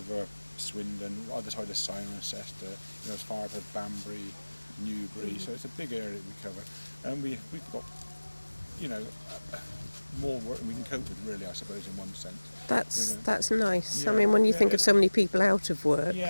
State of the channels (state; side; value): inverted; both; correlation -1.00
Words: Swindon, either side of Cirencester, you know, as far as Banbury, Newbury. So it's a big area that we cover, and we've got, you know, more work than we can cope with, really, I suppose, in one sense. That's nice. Yeah, I mean, when you think of so many people out of work.